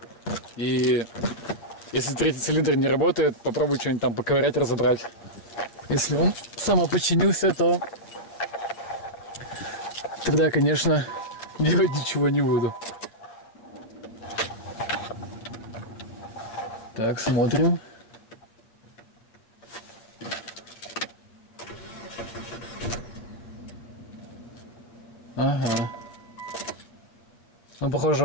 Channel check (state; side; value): late; right; 8.9 ms